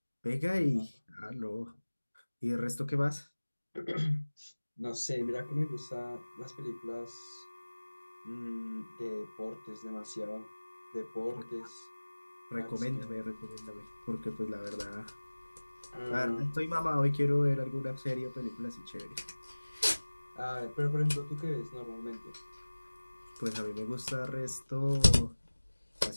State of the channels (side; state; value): both; inverted; correlation -1.00